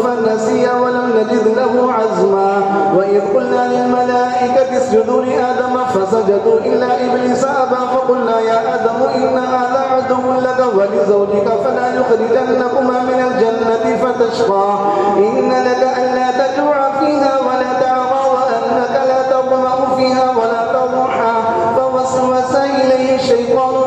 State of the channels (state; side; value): identical; both; correlation 1.00